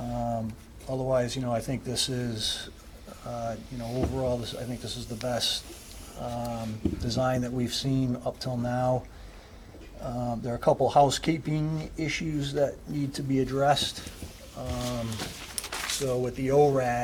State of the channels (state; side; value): identical; both; correlation 1.00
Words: Otherwise, you know, I think this is, you know, overall, I think this is the best, design that we've seen up till now. There are a couple housekeeping issues that need to be addressed. So with the